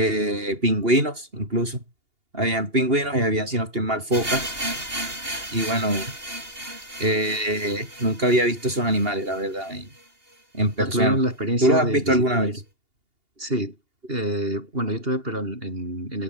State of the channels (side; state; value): left; late; 2.8 ms